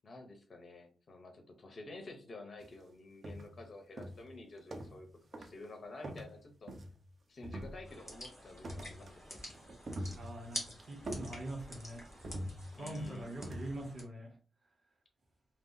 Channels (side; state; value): both; normal; correlation 0.87